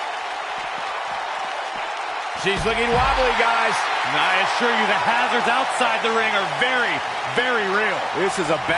She's looking wobbly, guys. And I assure you the hazards outside the ring are very, very real. This is a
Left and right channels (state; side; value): identical; both; correlation 1.00